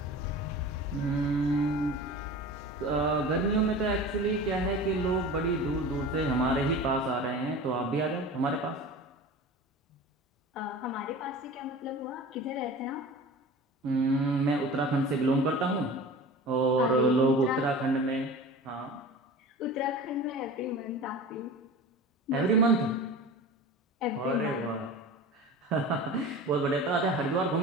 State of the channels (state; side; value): normal; both; correlation 0.36